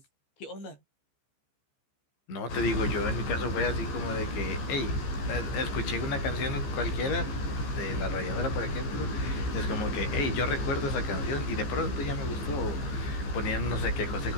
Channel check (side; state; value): right; late; 14 ms